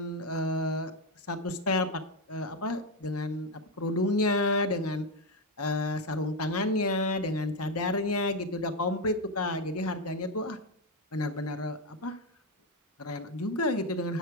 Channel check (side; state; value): both; normal; correlation 0.08